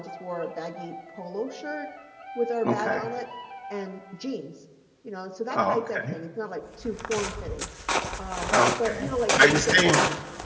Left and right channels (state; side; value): identical; both; correlation 1.00